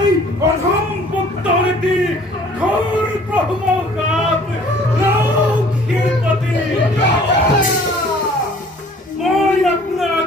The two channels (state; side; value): normal; both; correlation 0.53